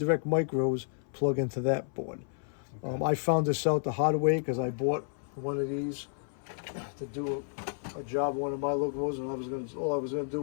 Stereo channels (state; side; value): silent; right; 57 dB below the other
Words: micros plug into that board. Okay. I found this out the hard way because I bought one of these to do a job on one of my locomotives, and all I was gonna